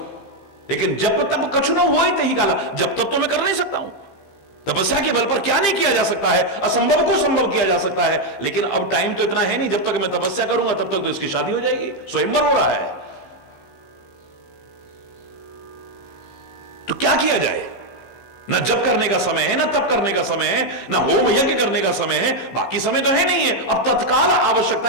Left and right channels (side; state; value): right; late; 15 ms